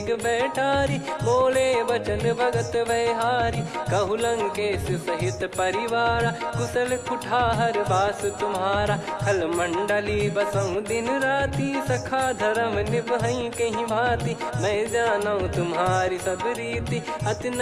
बैठारी। बोले बचन भगत भयहारी, कहु लंकेश सहित परिवारा। कुशल कुठार बास तुम्हारा, खल मंडली बसऊं दिन राती। सखा धर्म निभई कहीं भांति, मैं जानू तुम्हारी सब रीति। अति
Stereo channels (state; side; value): identical; both; correlation 1.00